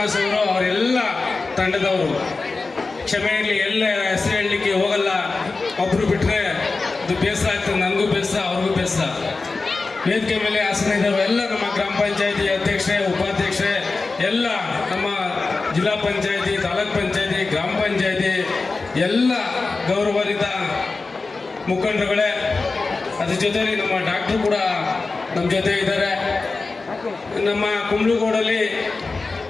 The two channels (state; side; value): quieter; right; 3.9 dB